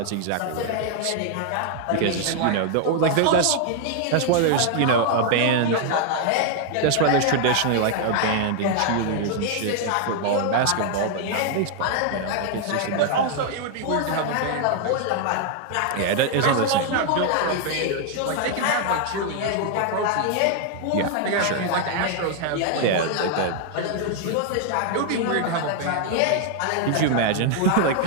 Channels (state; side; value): different; both; correlation 0.00